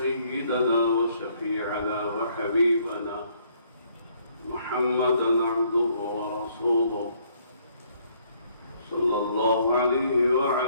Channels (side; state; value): both; inverted; correlation -0.66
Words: وشفيعنا وحبيبنا محمدا عبده ورسوله صلى الله عليه